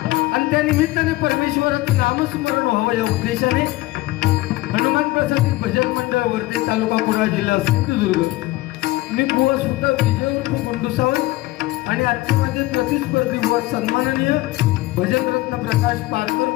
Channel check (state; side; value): quieter; right; 18.7 dB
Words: आणि त्या निमित्ताने परमेश्वराचं नामस्मरण व्हावं या उद्देशाने हनुमान प्रसादी भजन मंडळ वर्धे तालुका कुडाळ जिल्हा सिंधुदुर्ग मी बुवा सुद्धा विजय उर्फ गुंडू सावंत आणि आजचे माझे प्रतिस्पर्धी बुवा सन्माननीय भजनरत्न प्रकाश पारकर